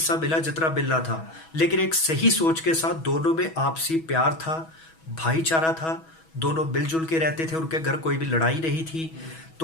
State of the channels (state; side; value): late; right; 6.2 ms